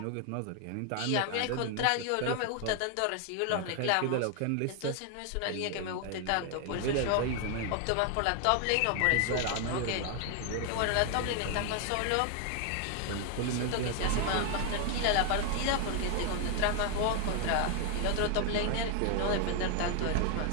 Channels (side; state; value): both; different; correlation 0.01